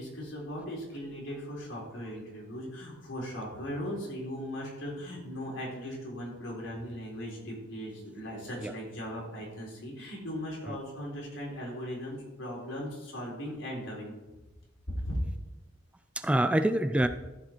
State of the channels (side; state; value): both; normal; correlation 0.75